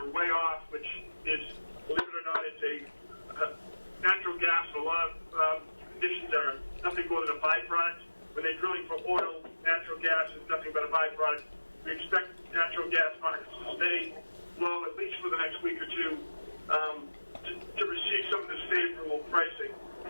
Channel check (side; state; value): both; inverted; correlation -1.00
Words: way off, which is, believe it or not, it's a natural gas. A lot of conditions are nothing more than a byproduct. When they're drilling for oil, natural gas is nothing but a byproduct. We expect natural gas markets to stay low at least for the next week or two to receive some of this favorable pricing.